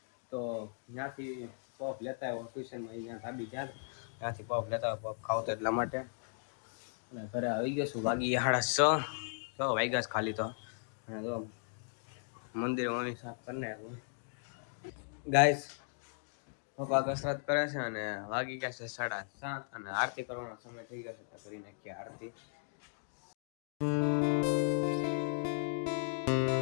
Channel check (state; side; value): silent; right; digital silence